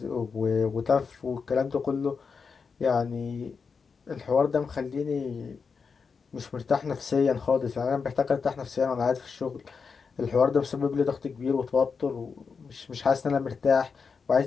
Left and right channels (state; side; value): quieter; right; 5.4 dB